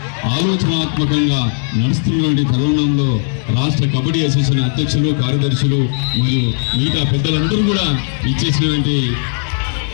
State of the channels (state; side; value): silent; right; digital silence